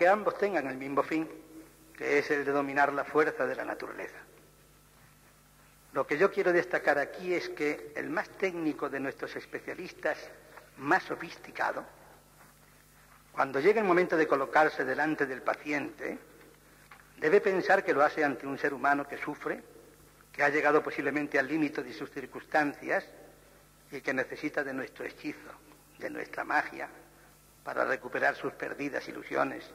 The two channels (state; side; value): identical; both; correlation 1.00